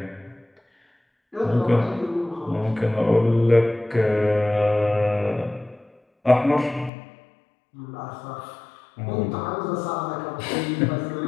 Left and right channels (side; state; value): right; drops out; at 6.9 s